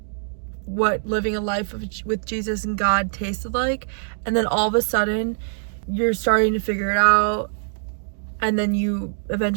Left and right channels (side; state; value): left; silent; digital silence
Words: what living a life with Jesus and God tasted like, and then all of a sudden you're starting to figure it out, and then you